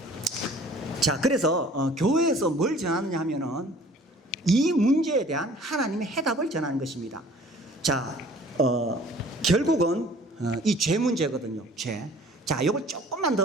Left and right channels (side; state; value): both; normal; correlation 0.51